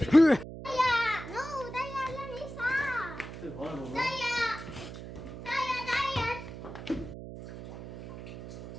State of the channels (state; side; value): noise; right; hum, 11 dB below the sound